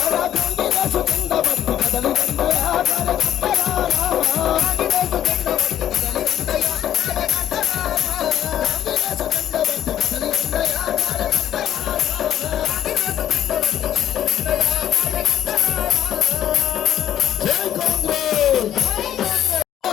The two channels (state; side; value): quieter; right; 11.0 dB